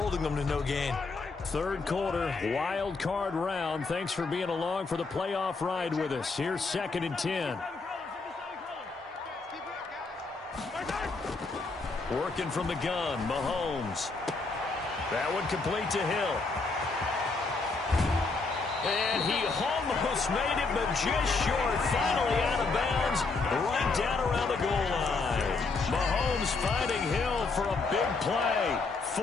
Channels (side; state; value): right; quieter; 4.0 dB